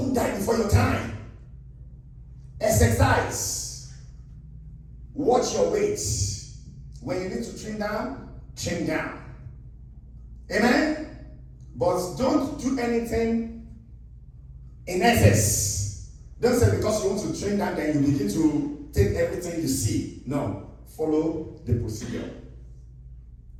die before your time. Exercise. Watch your weight. When you need to trim down, trim down. Amen? But don't do anything in excess. Don't say because you want to trim down, then you begin to take everything you see. No. Follow the procedure.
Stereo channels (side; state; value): both; identical; correlation 1.00